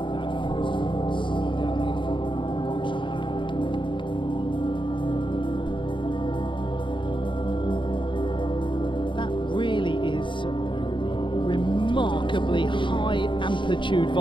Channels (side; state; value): right; late; 0.24 ms